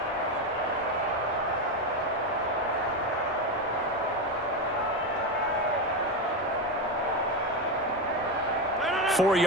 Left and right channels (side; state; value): both; normal; correlation 0.14